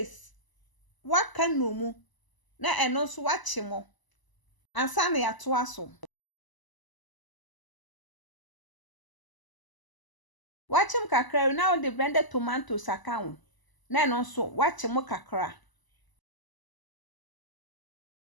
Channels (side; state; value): right; late; 1.0 ms